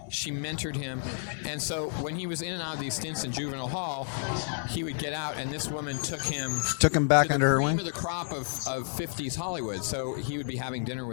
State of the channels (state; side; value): silent; right; digital silence